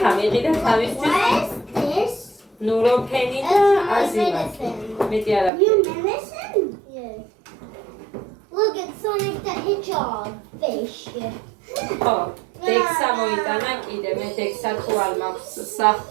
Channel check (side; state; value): left; drops out; at 5.5 s